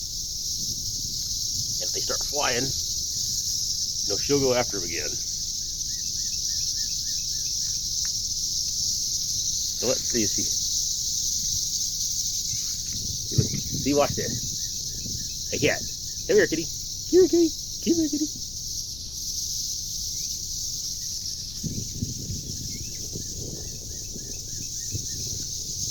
And if they start flying, she'll go after them again. So let's see if she. See, watch this. Hey, cat. Come here, kitty. Come here, kitty. Come here, kitty.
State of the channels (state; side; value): noise; left; rumble, 11 dB below the sound